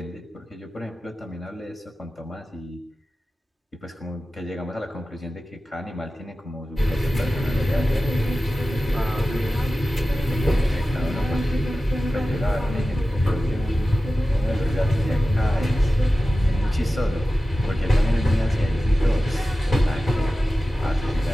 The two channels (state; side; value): normal; both; correlation 0.95